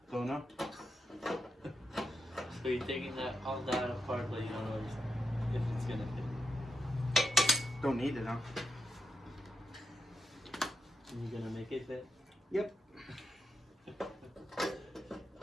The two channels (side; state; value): both; normal; correlation 0.83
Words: Don't know. So you're taking all that apart, but you don't know if it's gonna fit. Don't need it, huh? And you're gonna make it fit? Yep.